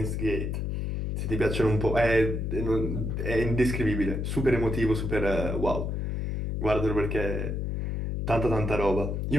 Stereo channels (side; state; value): left; noise; hum, 2 dB below the sound